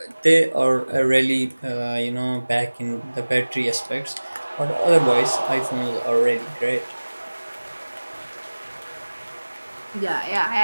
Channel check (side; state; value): both; inverted; correlation -1.00